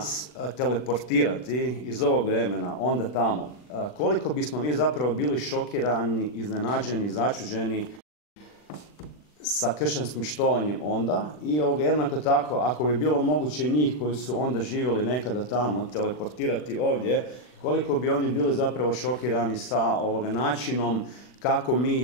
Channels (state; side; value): late; right; 40 ms